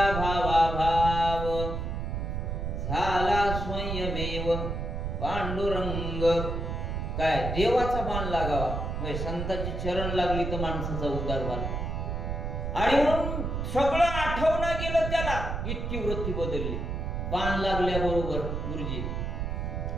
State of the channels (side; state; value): right; noise; rumble, 3 dB below the sound